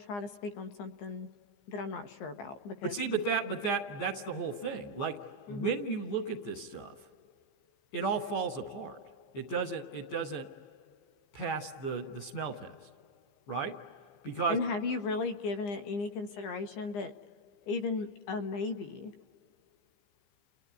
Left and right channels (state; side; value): late; right; 15 ms